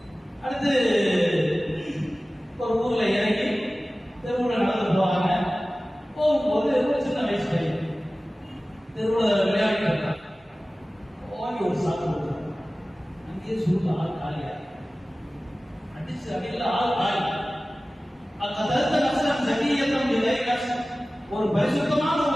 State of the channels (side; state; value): both; normal; correlation 0.97